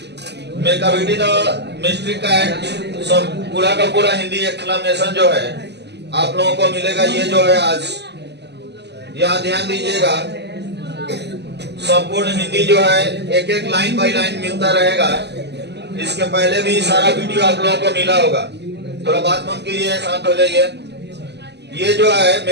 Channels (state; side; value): late; left; 0.50 ms